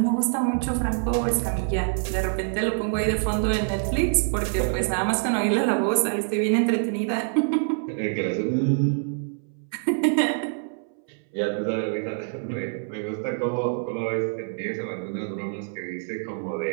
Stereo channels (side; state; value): left; silent; 61 dB below the other